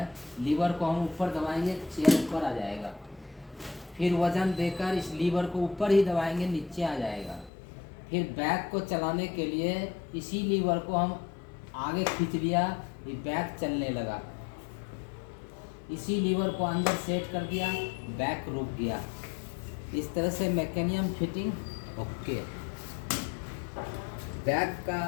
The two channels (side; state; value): right; drops out; at 7.5 s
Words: लीवर को हम ऊपर दबाएंगे, चेयर ऊपर आ जाएगा। फिर वजन देकर इस लीवर को ऊपर ही दबाएंगे, नीचे आ जाएगा। फिर बैक को चलाने के लिए इसी लीवर को हम आगे खींच लिया, ये बैक चलने लगा। इसी लीवर को अंदर सेट कर दिया, बैक रुक गया। इस तरह से मैकेनिज्म फिटिंग ओके। बैक का